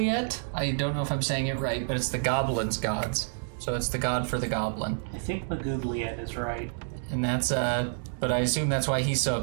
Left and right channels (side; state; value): left; silent; digital silence